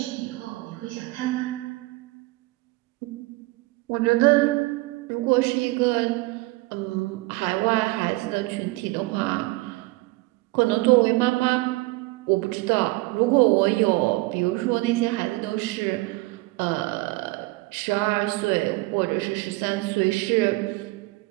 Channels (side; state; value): left; quieter; 22.0 dB